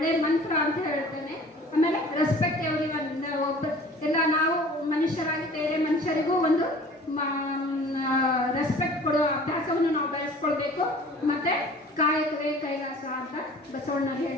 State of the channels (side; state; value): both; normal; correlation 0.47